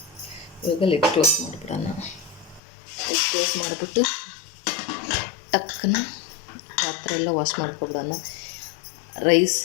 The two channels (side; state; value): right; drops out; at 2.6 s